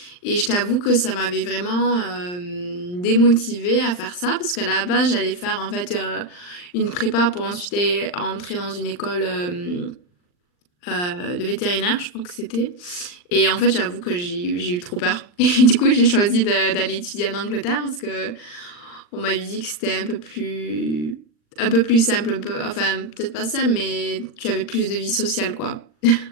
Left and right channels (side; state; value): right; late; 39 ms